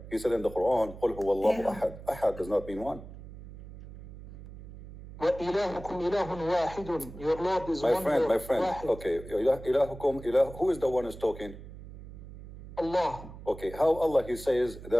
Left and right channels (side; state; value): right; noise; hum, 15 dB below the sound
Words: He said in the Quran, قُلْ هُوَ اللَّهُ أَحَدٌ. Ahad does not mean one. وَإِلَهُكُمْ إِلَهٌ وَاحِدٌ. Your Lord is one. My friend. واحد. Okay, إِلَهُكُمْ إِلَهُ. Who is the one who's talking? Allah. Okay, how Allah, He says